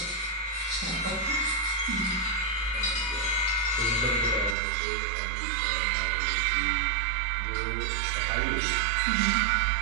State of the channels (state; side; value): drops out; left; at 4.5 s